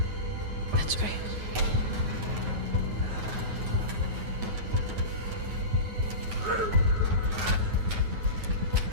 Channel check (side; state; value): left; late; 9.3 ms